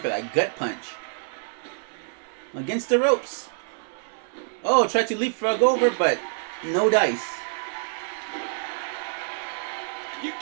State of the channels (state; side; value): silent; left; digital silence